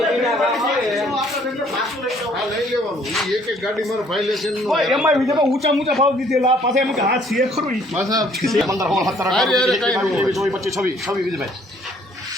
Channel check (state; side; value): normal; both; correlation 0.61